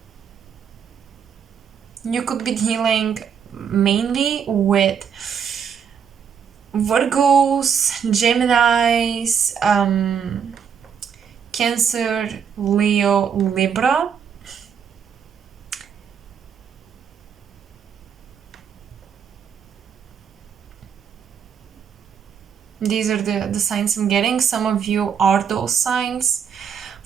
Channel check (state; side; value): quieter; left; 7.3 dB